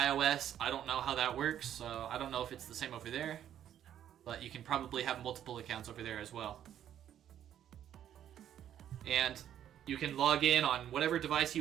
I don't know how that works, so I don't know if it's the same over there, but you can probably have multiple accounts over there as well. And you can log in on whatever device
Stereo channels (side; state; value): left; quieter; 10.5 dB